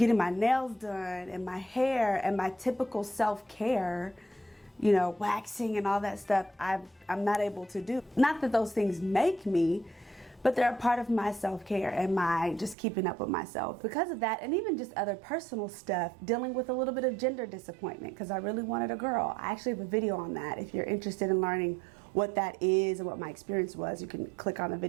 my nails done and my hair and my typical self-care, you know, waxing and all that stuff, I'm not able to do. Not that those things make me, but they're a part of my self-care and my just keeping up with myself. Because of that, and even just other personal stuff, dealing with a little bit of gender disappointment because I really wanted a girl. I actually have a video on that. If you're interested in learning what that is and what my experience was, you can click on the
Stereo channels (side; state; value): left; drops out; at 12.8 s